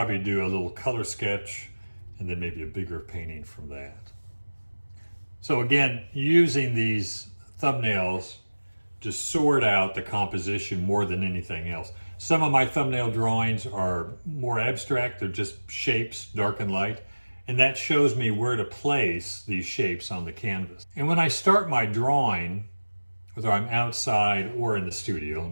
do a little color sketch and then maybe a bigger painting from that. So again, using these thumbnails to sort out the composition more than anything else. Some of my thumbnail drawings are more abstract. They're just shapes, dark and light. And that shows me where to place these shapes on the canvas. And when I start my drawing, whether I'm outside or in the studio, let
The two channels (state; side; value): inverted; both; correlation -1.00